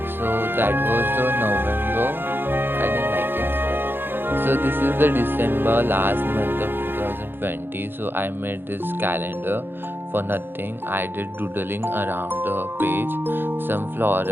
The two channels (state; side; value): late; left; 0.10 ms